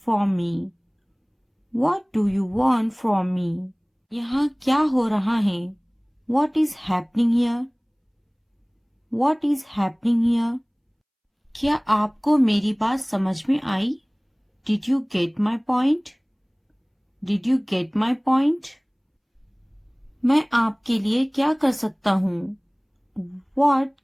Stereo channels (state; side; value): identical; both; correlation 1.00